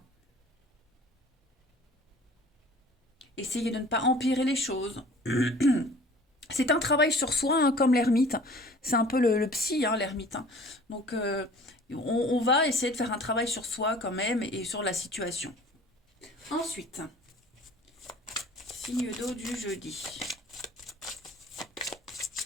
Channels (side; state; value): both; normal; correlation 0.48